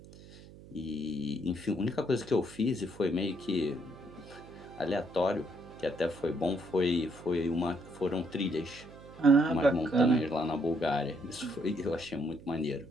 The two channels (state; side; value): noise; right; hum, 19 dB below the sound